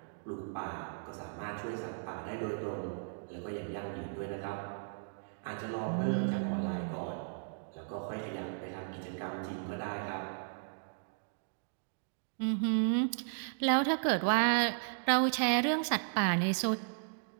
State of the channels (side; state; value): left; silent; digital silence